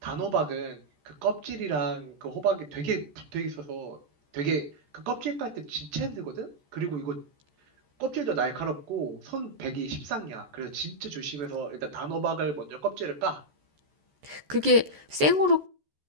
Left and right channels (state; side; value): late; left; 14 ms